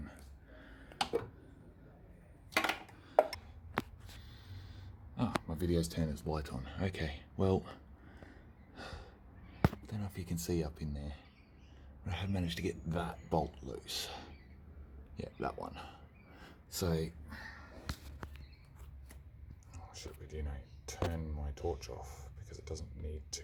Ah, my video's turned its light on. Okay, well, I don't know if you can see up in there, but I have managed to get that bolt loose. Yeah, that one. So, oh shit, we do know, turn my torch off because it doesn't need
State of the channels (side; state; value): both; identical; correlation 1.00